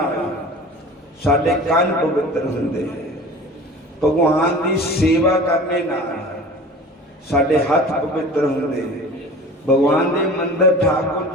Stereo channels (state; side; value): normal; both; correlation 0.40